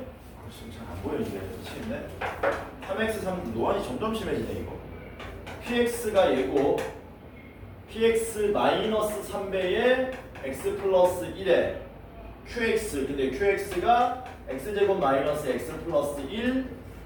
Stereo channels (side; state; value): both; identical; correlation 1.00